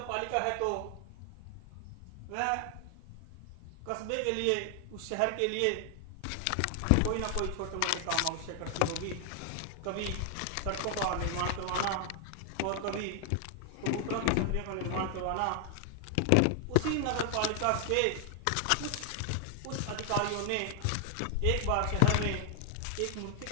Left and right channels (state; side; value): different; both; correlation 0.00